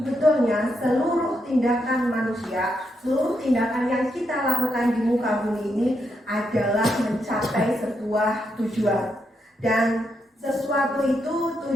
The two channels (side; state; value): both; normal; correlation 0.81